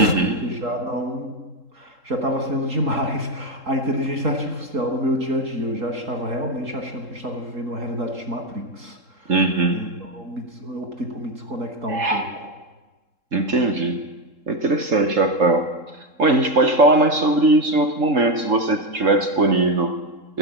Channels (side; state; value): left; late; 3.7 ms